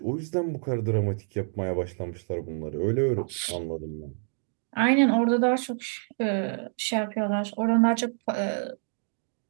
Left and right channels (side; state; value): left; silent; 60 dB below the other